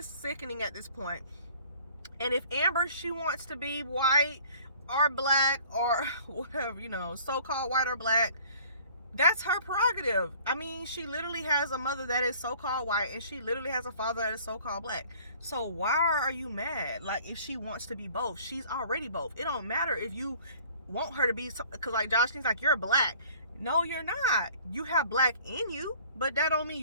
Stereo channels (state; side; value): inverted; both; correlation -0.52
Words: sickening at this point. And if Amber, she wants to be white or black or whatever, you know, so-called white or black, that's her prerogative. I mean, she literally has a mother that is so-called white, and she literally has a father that is so-called black. So why are you mad? Like, if she wants to be both, she's already both. It don't matter if you want her to be, because like Joshlyn's like, you're black. No, you're not. You have black in you, but that don't mean